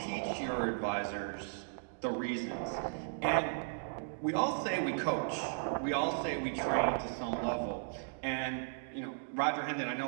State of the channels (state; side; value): silent; left; digital silence